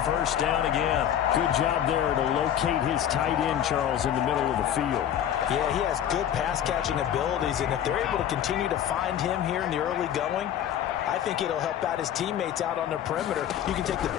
first down again. Good job there to locate his tight end, Charles, in the middle of the field. Yeah, he has good pass-catching abilities, and if they're able to continue to find him here in the early going, I think it'll help out his teammates out on the perimeter. You can take the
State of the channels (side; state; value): right; quieter; 10.2 dB